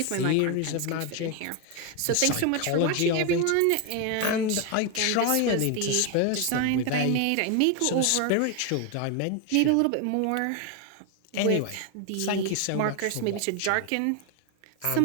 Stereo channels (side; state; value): both; different; correlation 0.01